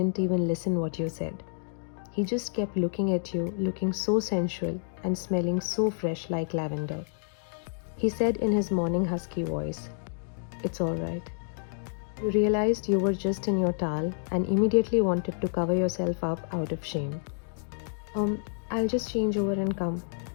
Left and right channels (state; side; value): silent; right; digital silence